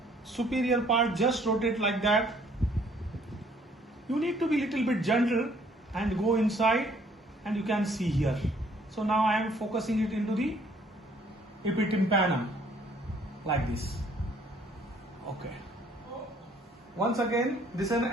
superior part, just rotate like that. You need to be little bit gentle and go inside, and you can see here. So now I am focusing it into the epitympanum like this. Okay. Once again, this is an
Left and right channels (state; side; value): normal; both; correlation 0.62